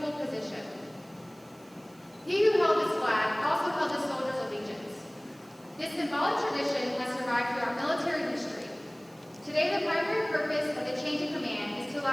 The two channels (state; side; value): noise; right; hiss, 28 dB below the sound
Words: position. He who held this flag also held the soldier's allegiance. This symbolic tradition has survived throughout military history. Today, the primary purpose of the change of command is to